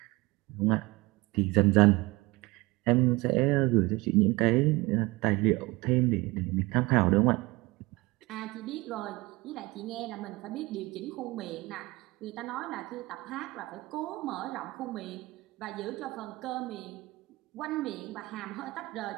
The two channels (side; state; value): left; quieter; 22.3 dB